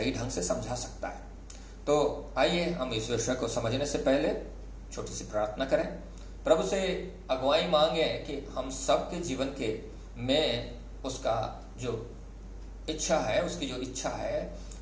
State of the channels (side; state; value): both; identical; correlation 1.00